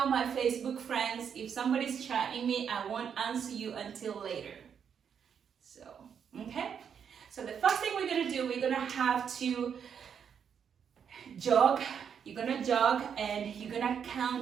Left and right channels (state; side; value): quieter; left; 7.6 dB